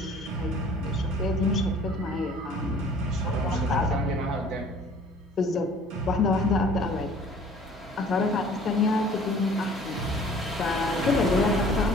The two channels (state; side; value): normal; both; correlation 0.51